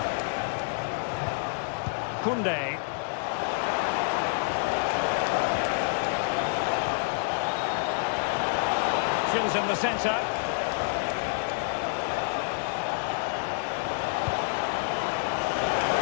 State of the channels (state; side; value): silent; right; digital silence